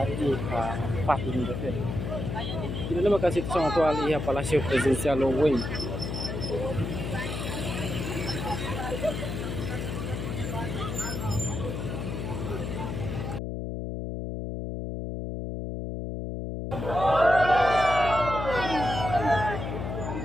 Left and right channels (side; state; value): left; noise; hum, 4 dB below the sound